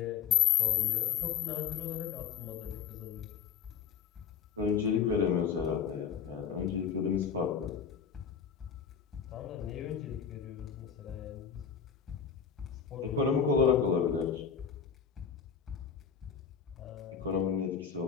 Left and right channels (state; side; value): quieter; right; 7.3 dB